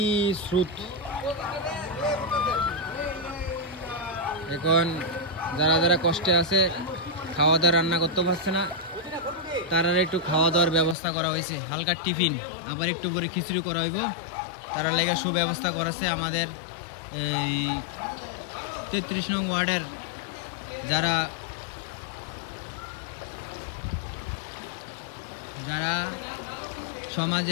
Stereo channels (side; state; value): right; drops out; at 11.0 s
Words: স্রোত। এখন যারা যারা কষ্টে আছে, খাওয়া দাওয়া রান্না করতে পারছে না, তারা একটু খাওয়া দাওয়ার ব্যবস্থা করা হয়েছে। হালকা টিফিন, আবার একটু পরে খিচুড়ি করা হইব। তারা লেগে সুব্যবস্থা করেছে আমাদের এই 33 নং ওয়ার্ডের যারা যারা